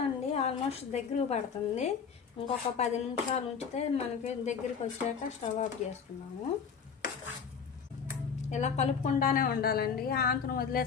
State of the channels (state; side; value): quieter; right; 6.5 dB